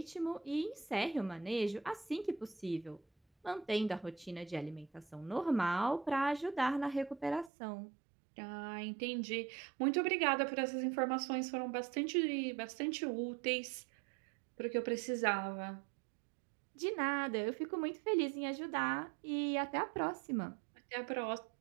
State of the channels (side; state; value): left; drops out; at 7.5 s